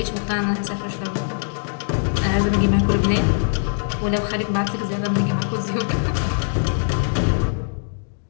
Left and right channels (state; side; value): silent; right; digital silence